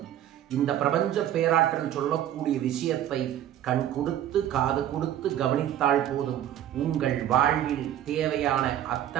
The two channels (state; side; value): quieter; left; 11.4 dB